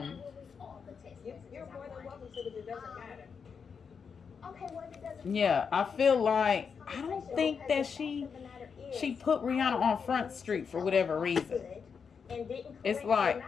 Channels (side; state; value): right; quieter; 6.1 dB